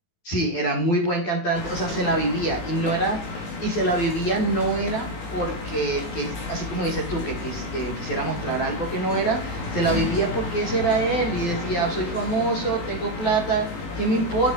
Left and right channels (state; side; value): late; right; 19 ms